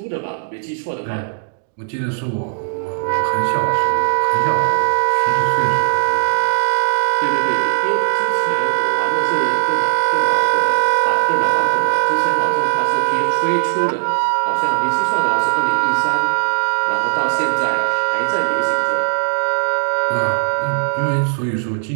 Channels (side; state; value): left; silent; digital silence